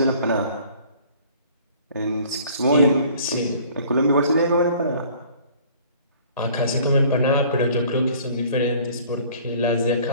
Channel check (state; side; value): inverted; both; correlation -0.53